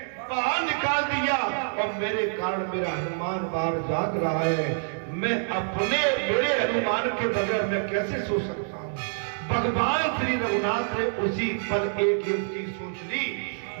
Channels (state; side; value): silent; left; digital silence